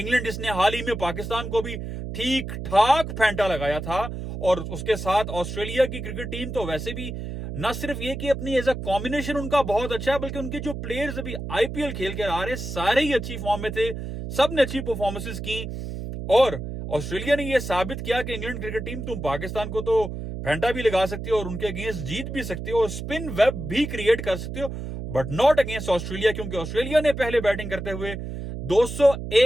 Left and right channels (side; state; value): right; noise; hum, 7 dB below the sound